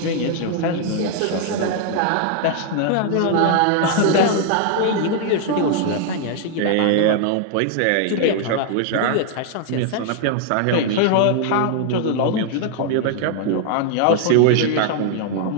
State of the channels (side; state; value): both; different; correlation 0.00